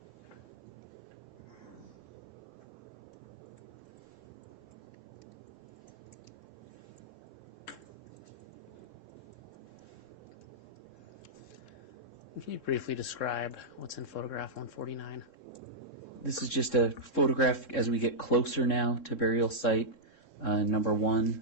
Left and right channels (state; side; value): late; right; 3.7 ms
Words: Can you briefly describe what's in photograph 149? This is just a photograph as we get closer now to burial site number